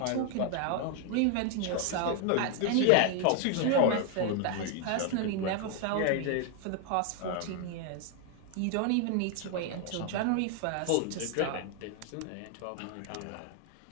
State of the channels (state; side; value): different; both; correlation 0.00